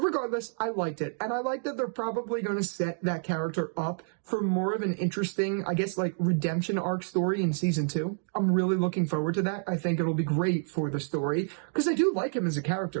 I liked it. And I like that they're probably going to set that character up for more of an interesting, I guess, like, redemption arc story in season 2. I'm really looking forward to that. I think it'll be great for the story, because I do like him as a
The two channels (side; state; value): left; silent; digital silence